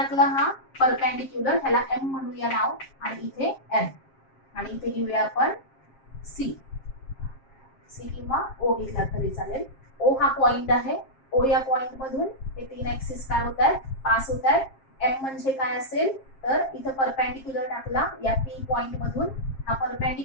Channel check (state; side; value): late; right; 7.5 ms